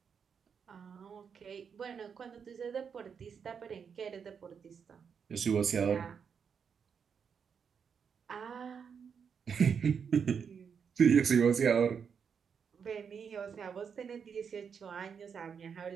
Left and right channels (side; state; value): left; quieter; 6.7 dB